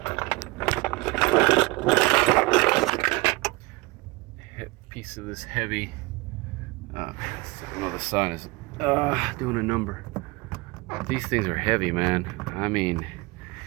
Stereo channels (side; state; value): left; quieter; 23.3 dB